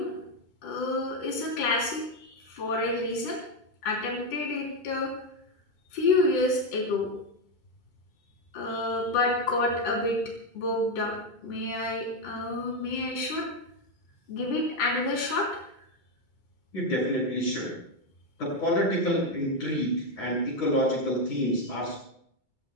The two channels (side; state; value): right; late; 2.2 ms